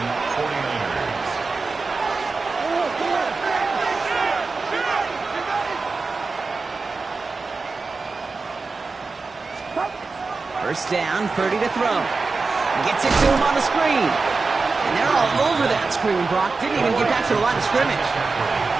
49ers. First down, Purdy to throw. Gets it to him on the screen. And they're all over that screen, Brock. Didn't even get back to the line of scrimmage.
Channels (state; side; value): quieter; left; 4.1 dB